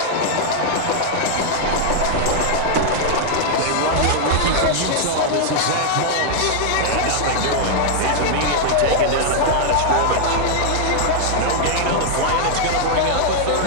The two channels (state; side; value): different; both; correlation -0.01